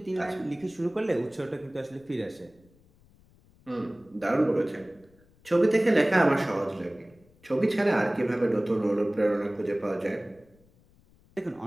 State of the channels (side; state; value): left; noise; rumble, 30 dB below the sound